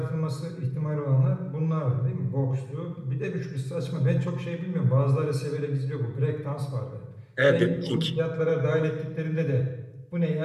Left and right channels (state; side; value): identical; both; correlation 1.00